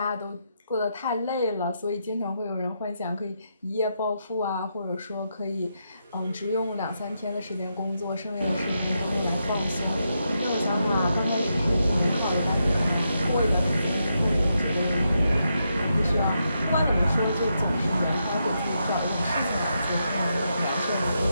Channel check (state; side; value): inverted; both; correlation -0.83